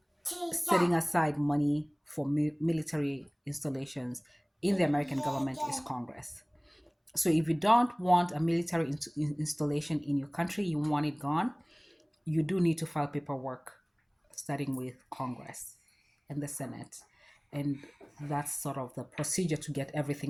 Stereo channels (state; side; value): identical; both; correlation 1.00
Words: setting aside money for military installations in the American government is Congress. So, if you don't want a military installation in your country, you want it gone, you do need to file paperwork starting with Congress and the Senate. And that's sort of the procedure to get